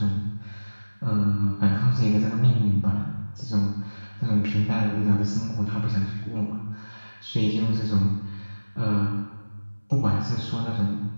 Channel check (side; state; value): both; inverted; correlation -1.00